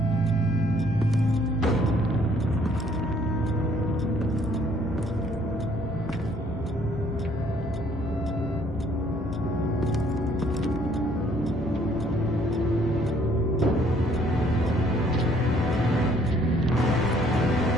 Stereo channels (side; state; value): both; normal; correlation 0.62